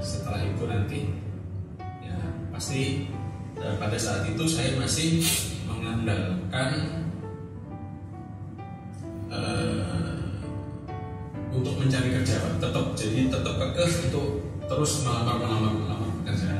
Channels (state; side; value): identical; both; correlation 1.00